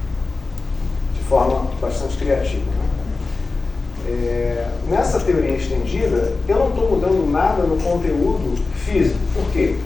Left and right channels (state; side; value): quieter; right; 3.8 dB